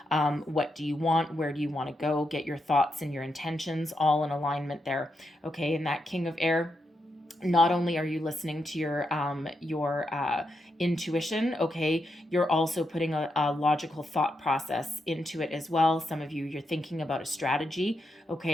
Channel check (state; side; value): normal; both; correlation 0.84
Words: What do you want? Where do you want to go? Get your thoughts and your intentions all in alignment there. Okay, and that King of Air, not only are you listening to your intuition, okay, you're also putting a logical thought process into it as well. Some of you, you're thinking about a strategy.